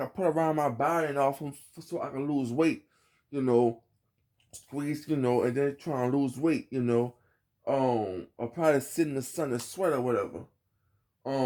put around my body and off so I can lose weight, you know, squeeze, and then try and lose weight, or probably sit in the sun and sweat or whatever.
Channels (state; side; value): identical; both; correlation 1.00